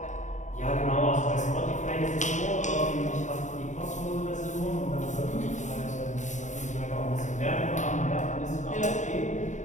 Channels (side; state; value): right; late; 0.35 ms